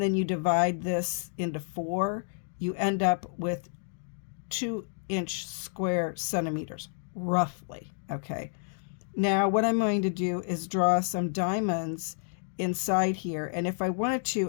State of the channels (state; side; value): silent; right; digital silence